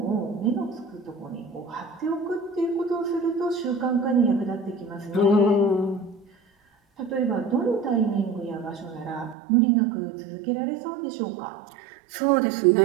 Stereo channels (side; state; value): left; drops out; at 9.3 s